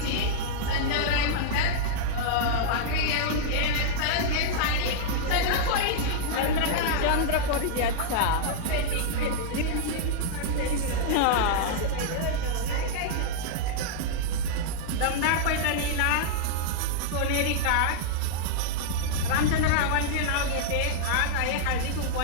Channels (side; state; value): both; different; correlation -0.02